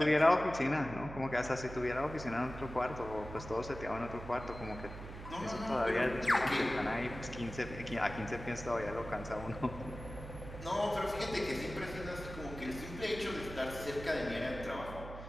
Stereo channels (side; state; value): right; noise; hum, 11 dB below the sound